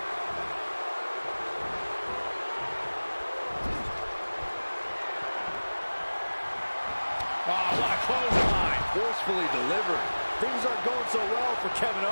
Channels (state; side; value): inverted; both; correlation -1.00